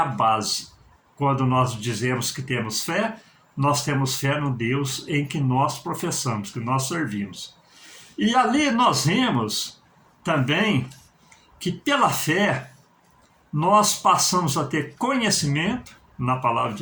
base. Quando nós dizemos que temos fé, nós temos fé no Deus em que nós professamos, que nós servimos. E ali nós vemos também que pela fé nós passamos a ter conhecimento na palavra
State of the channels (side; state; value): both; identical; correlation 1.00